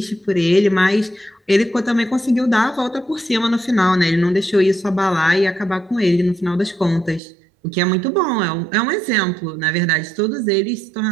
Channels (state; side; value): drops out; left; at 7.2 s